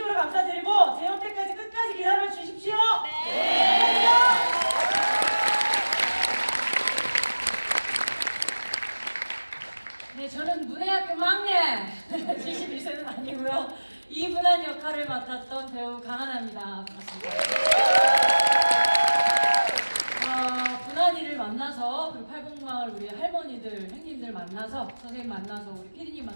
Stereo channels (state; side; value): inverted; both; correlation -1.00